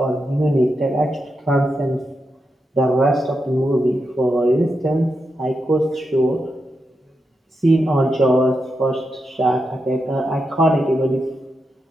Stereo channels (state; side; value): normal; both; correlation 0.86